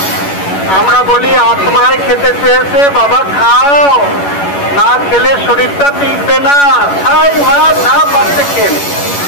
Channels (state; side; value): late; right; 11 ms